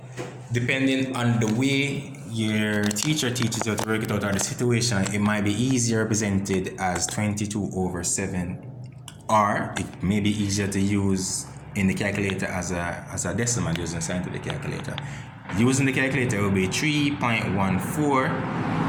depending on the way your teacher teaches you to work it out or the situation, it might be easier represented as 22/7, or it may be easier to use in the calculator as a decimal using a scientific calculator. Using the calculator will be 3.14.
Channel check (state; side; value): identical; both; correlation 1.00